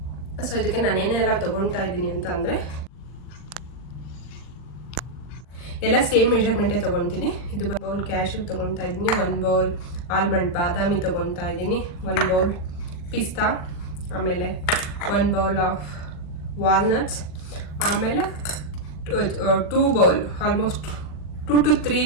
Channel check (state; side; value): late; right; 40 ms